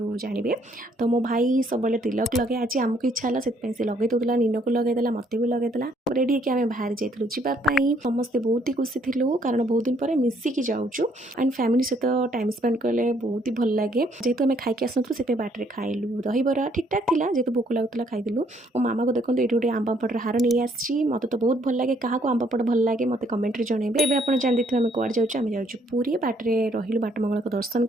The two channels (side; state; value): both; normal; correlation 0.67